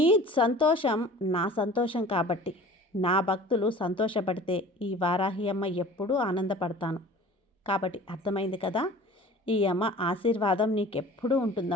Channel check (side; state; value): both; normal; correlation 0.44